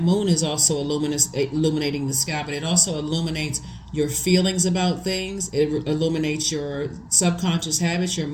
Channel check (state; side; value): identical; both; correlation 1.00